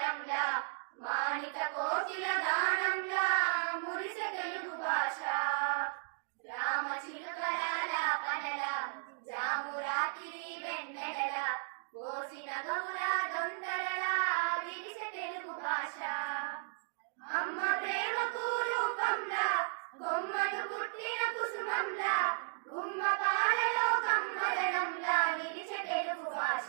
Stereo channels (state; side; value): silent; left; digital silence